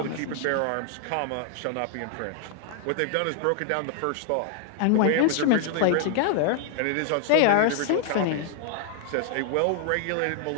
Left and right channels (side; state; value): both; different; correlation 0.00